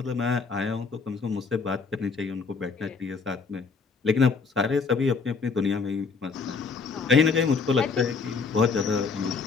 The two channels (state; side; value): quieter; right; 4.9 dB